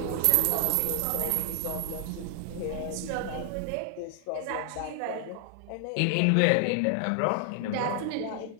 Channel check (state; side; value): different; both; correlation 0.00